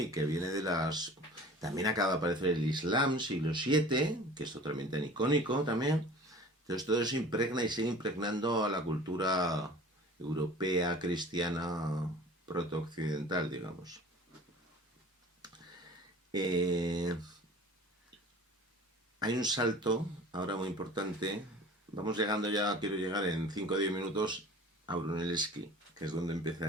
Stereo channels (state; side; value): normal; both; correlation 0.43